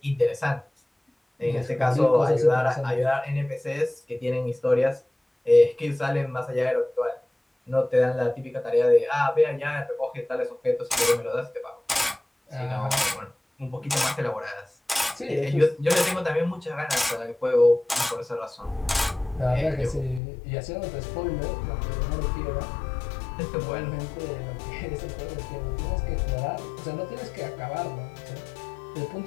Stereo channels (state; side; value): drops out; right; at 20.2 s